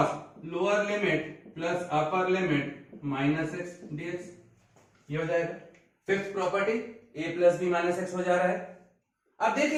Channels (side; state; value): both; identical; correlation 1.00